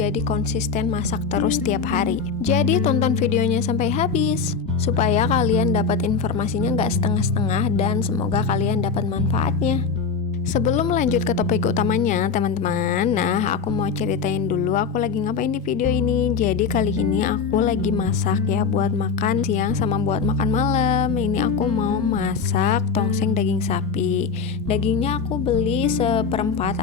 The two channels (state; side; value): quieter; right; 5.4 dB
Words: konsisten masak terus tiap hari. Jadi tonton videonya sampai habis supaya kalian dapat informasinya nggak setengah-setengah dan semoga kalian dapat manfaatnya. Sebelum lanjut ke topik utamanya teman-teman, nah aku mau ceritain dulu aku lagi ngapain di video ini. Jadi kali ini aku lagi masak ya buat makan siang sama buat makan malam. Ini aku mau masak tongseng daging sapi. Dagingnya aku beli seperempat